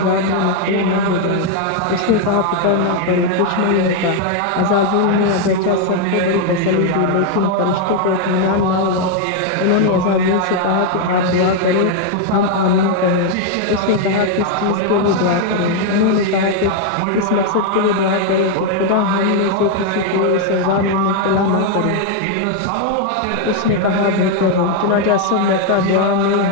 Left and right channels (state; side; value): different; both; correlation 0.01